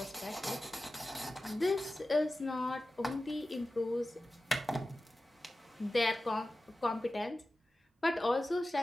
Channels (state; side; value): normal; both; correlation 0.95